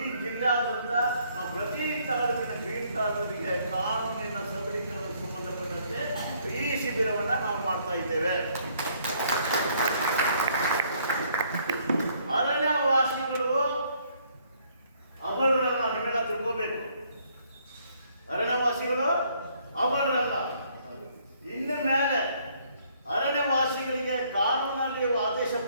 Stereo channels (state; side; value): inverted; both; correlation -0.66